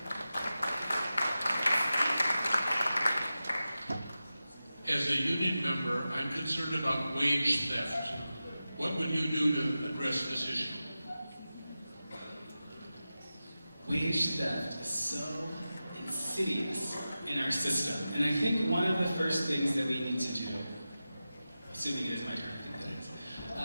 As a union member, I'm concerned about wage theft. What would you do to address this issue? Wage theft is so insidious in our system. And I think one of the first things that we need to do, assuming it is my turn, I think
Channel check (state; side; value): inverted; both; correlation -0.94